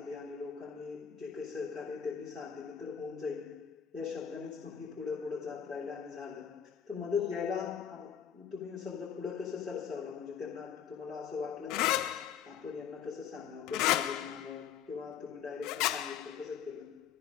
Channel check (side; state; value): right; quieter; 8.3 dB